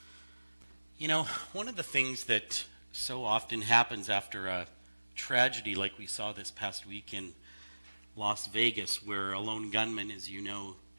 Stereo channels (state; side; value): inverted; both; correlation -1.00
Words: You know, one of the things that so often happens after a tragedy like we saw this past week in Las Vegas, where a lone gunman, as you know,